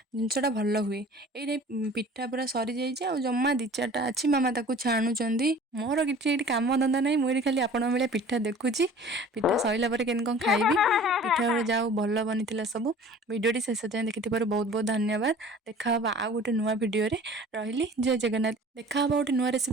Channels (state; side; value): normal; both; correlation 0.45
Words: जिनसटा भल हुए ये पिठा पूरा सरी जाइए जमा दी चार्टा अच्छी मामा ताकू छाणुंट मोर कि कम धंदा ना मुझे खाली आपण भाई पिठा देखुची पिठा सरला केन कौन खाइबी पिठा गुड़ा जाओ भल बनी सब वीडियोटी शेष जाए देखि बहुत बहुत धन्यवाद देखा आ गोटे नुआ वीडियो रही जय जगन्नाथ देखा गोटे नुआ